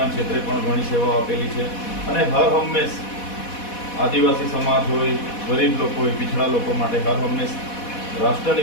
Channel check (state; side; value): late; right; 4.1 ms